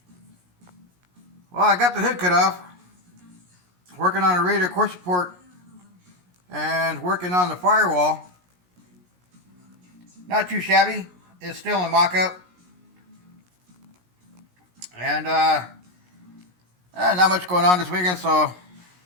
Well, I got the hood cut off, working on a radar course report and working on the firewall. Not too shabby. It's still in mock-up. And not much going on this weekend, so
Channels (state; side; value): late; left; 17 ms